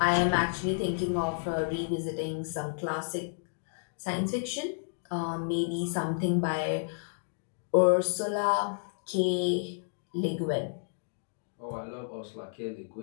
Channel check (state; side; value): silent; right; digital silence